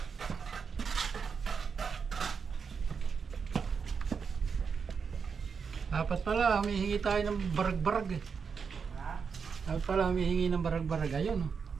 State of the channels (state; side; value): quieter; left; 5.9 dB